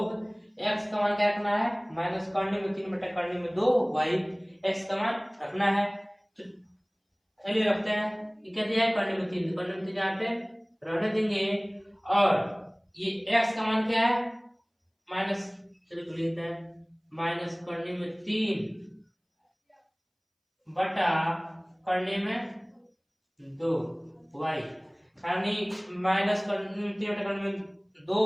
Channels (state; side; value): identical; both; correlation 1.00